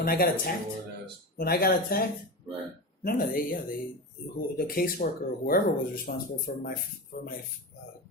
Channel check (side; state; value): both; normal; correlation 0.23